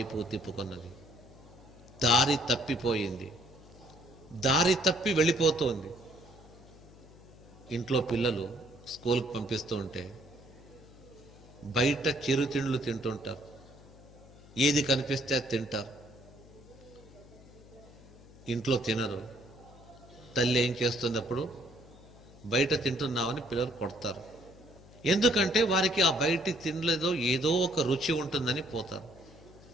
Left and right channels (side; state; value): left; noise; hum, 21 dB below the sound